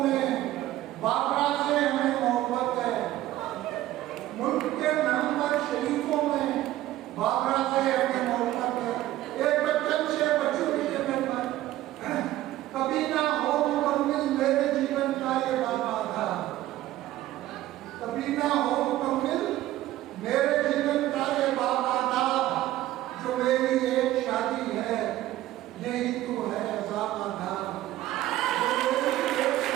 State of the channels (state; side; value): quieter; left; 14.9 dB